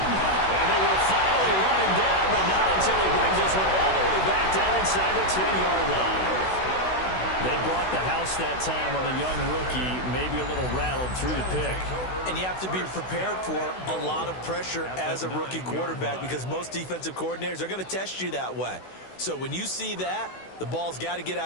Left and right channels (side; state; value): right; late; 16 ms